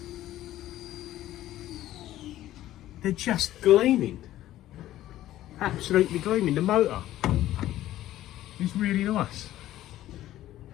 They're just gleaming. Absolutely gleaming. The motor is really nice.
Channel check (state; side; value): quieter; right; 14.0 dB